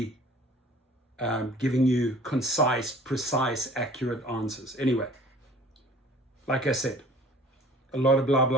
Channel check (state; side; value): normal; both; correlation 0.48